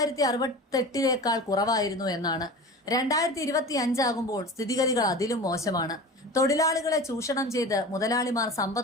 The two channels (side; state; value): both; normal; correlation 0.34